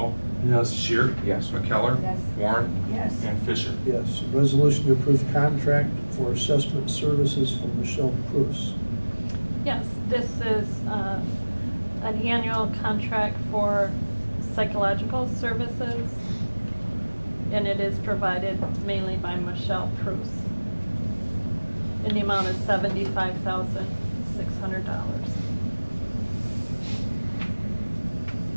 Yes. Shear? Yes. McKellar? Yes. Warren? Yes. And Fisher? Yes, resolution to approve contract for assessment services for Michelle Prus. Yes, this is an annual contract for psychological services, and it is provided mainly by Michelle Prus. And the amount is $75,600.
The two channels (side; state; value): both; inverted; correlation -1.00